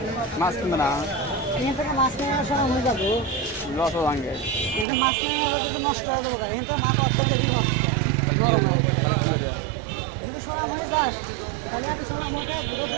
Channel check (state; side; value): drops out; left; at 4.9 s